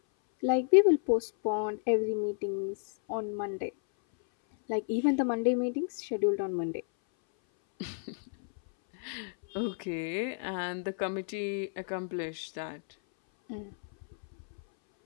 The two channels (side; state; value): right; silent; 57 dB below the other